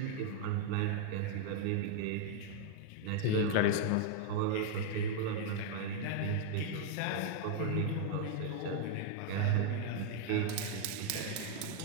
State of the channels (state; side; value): different; both; correlation 0.00